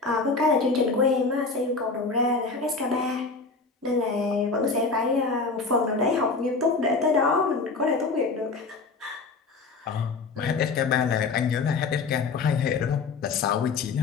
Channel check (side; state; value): right; quieter; 4.2 dB